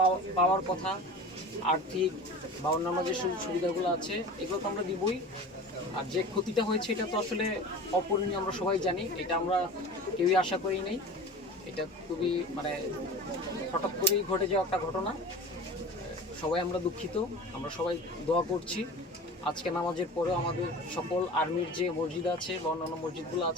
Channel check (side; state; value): both; normal; correlation 0.36